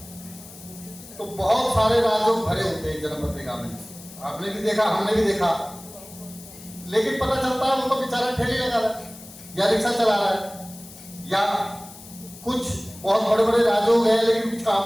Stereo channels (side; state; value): left; noise; hiss, 18 dB below the sound